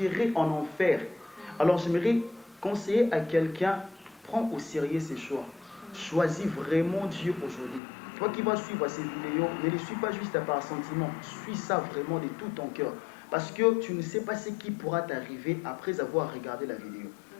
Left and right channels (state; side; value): drops out; right; at 7.8 s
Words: en enfer. Alors j'aimerais conseiller à quelqu'un, prends au sérieux ses choix. Choisis vraiment Dieu aujourd'hui. Toi qui vas suivre ces vidéos, ne les suis pas juste par sentiment, suis ça vraiment de tout ton cœur. Parce que tu ne sais pas ce qui pourra t'arriver après avoir regardé la vidéo.